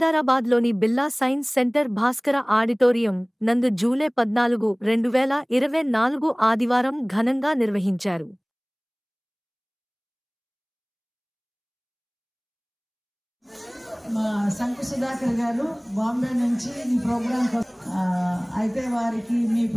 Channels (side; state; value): both; identical; correlation 1.00